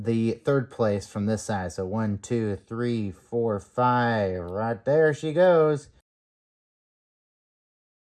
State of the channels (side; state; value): both; identical; correlation 1.00